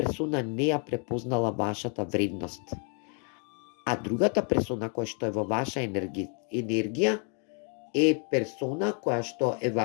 не ја препознала вашата вредност. А другата персона која што е во ваша енергија е персона која што е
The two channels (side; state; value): right; quieter; 39.7 dB